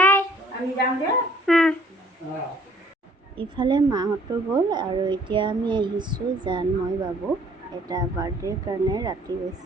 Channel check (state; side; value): normal; both; correlation 0.58